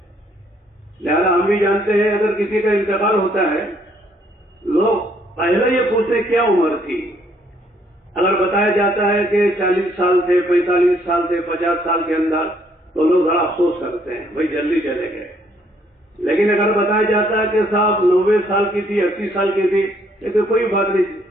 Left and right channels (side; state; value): both; normal; correlation 0.67